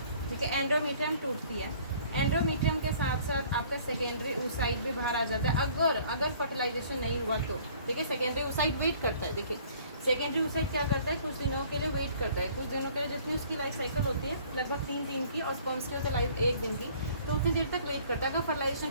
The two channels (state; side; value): inverted; both; correlation -0.55